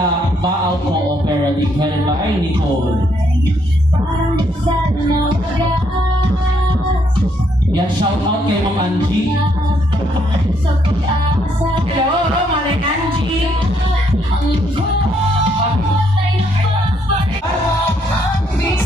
apparently headed by Nicole. Yan, shout out kay Ma'am Angie. Hello, Manay Angie.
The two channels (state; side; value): normal; both; correlation 0.72